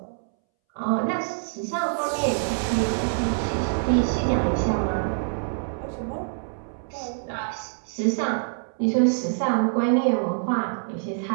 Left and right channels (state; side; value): silent; left; 61 dB below the other